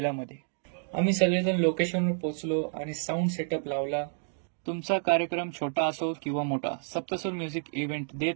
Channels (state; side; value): silent; left; digital silence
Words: आम्ही सगळेजण लोकेशनवर पोहोचलो आणि साऊंड सेटअप लावला. तुमचा कार्यक्रम छोटा असो किंवा मोठा, सप्तसूर म्युझिक इव्हेंट देत